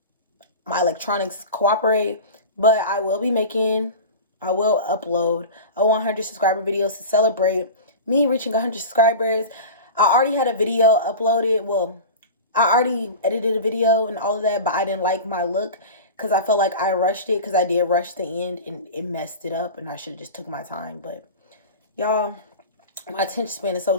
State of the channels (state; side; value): inverted; both; correlation -0.31